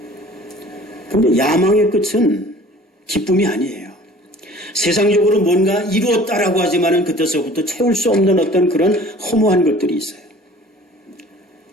근데 야망의 끝은 기쁨이 아니에요. 세상적으로 뭔가 이루었다라고 하지만은 그때서부터 채울 수 없는 어떤 그런 허무한 것들이 있어요.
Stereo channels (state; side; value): normal; both; correlation 0.48